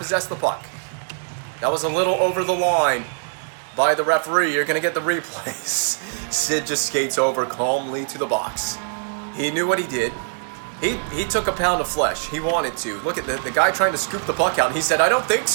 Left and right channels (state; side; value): silent; left; digital silence